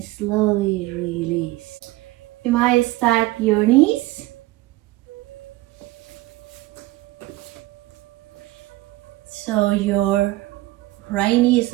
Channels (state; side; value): quieter; left; 18.8 dB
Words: slowly release. You might stack your knees. So your right knee is